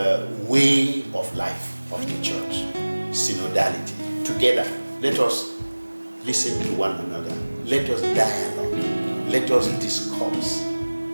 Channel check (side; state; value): both; inverted; correlation -1.00